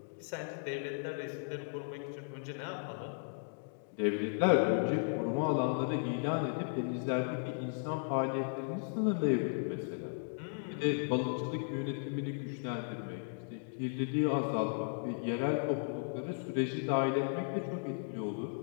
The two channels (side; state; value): right; silent; digital silence